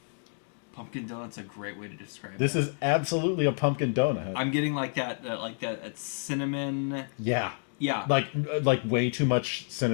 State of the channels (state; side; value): silent; right; 58 dB below the other